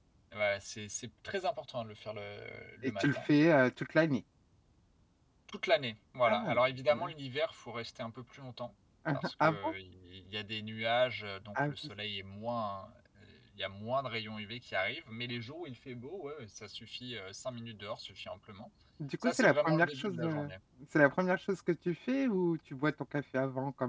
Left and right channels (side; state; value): both; identical; correlation 1.00